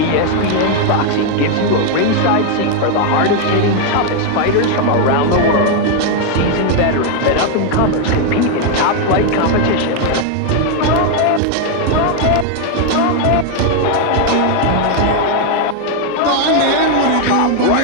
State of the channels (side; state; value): both; different; correlation 0.01